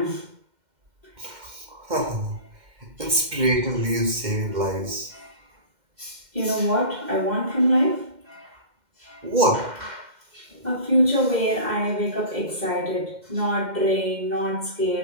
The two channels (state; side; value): late; left; 2.1 ms